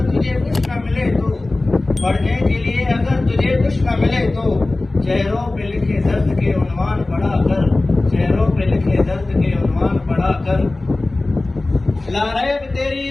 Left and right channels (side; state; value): right; quieter; 3.0 dB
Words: तुझे कुछ न मिले तो, पढ़ने के लिए अगर तुझे कुछ न मिले तो, चेहरों पे लिखे दर्द के उन्वान पढ़ा कर, चेहरों पे लिखे दर्द के उन्वान पढ़ा कर। लारैब तेरी